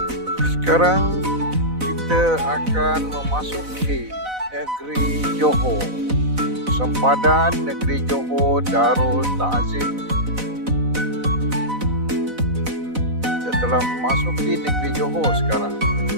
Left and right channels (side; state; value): left; late; 4.0 ms